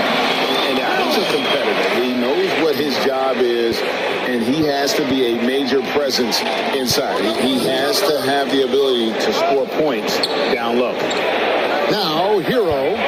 Allen's a competitor. He knows what his job is, and he has to be a major presence inside. He has to have the ability to score points down low. Now, Hero.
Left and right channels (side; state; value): both; identical; correlation 1.00